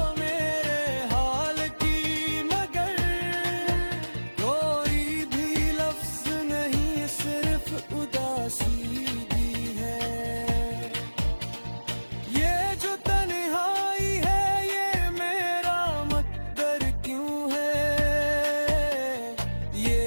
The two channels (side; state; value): both; inverted; correlation -1.00